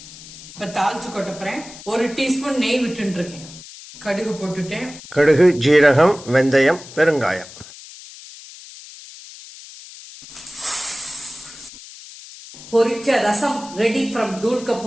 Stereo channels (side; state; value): left; noise; hiss, 17 dB below the sound